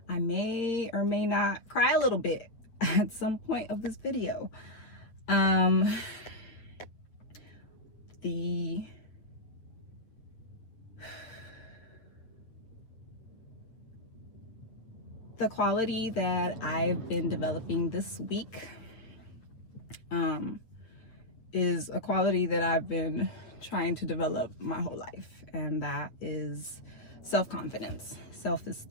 I may or may not cry a little bit at some point of this video. The quality that I've been developing this week is a quality that I've been trying to develop my whole life, and that is self-confidence,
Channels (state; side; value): late; right; 8.6 ms